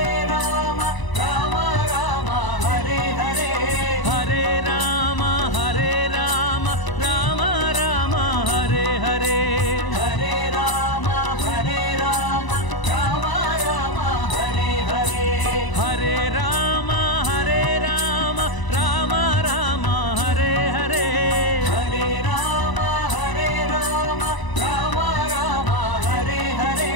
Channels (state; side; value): late; right; 1.0 ms